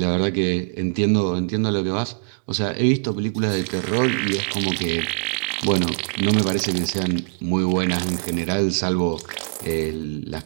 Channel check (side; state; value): left; silent; digital silence